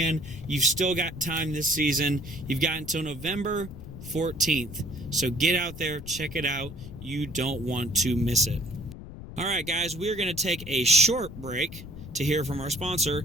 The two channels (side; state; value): left; noise; rumble, 13 dB below the sound